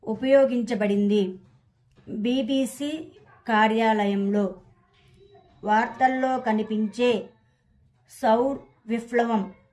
ఉపయోగించబడింది? BBC కార్యాలయంలో. వార్తల్లో కనిపించే సౌర్ విప్లవం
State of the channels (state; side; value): identical; both; correlation 1.00